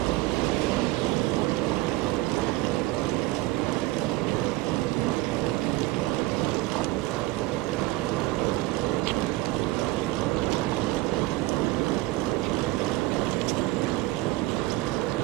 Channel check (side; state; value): left; quieter; 18.7 dB